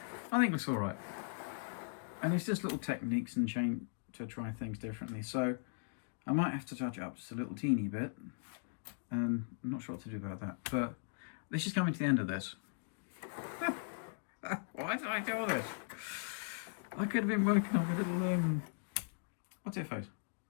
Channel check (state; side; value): silent; right; digital silence